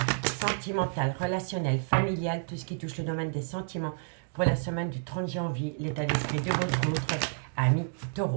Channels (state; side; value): silent; left; digital silence